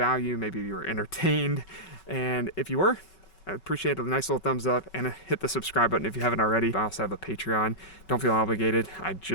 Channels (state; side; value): late; right; 5.3 ms